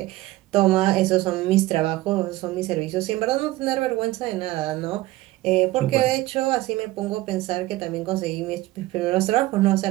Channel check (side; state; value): left; quieter; 17.6 dB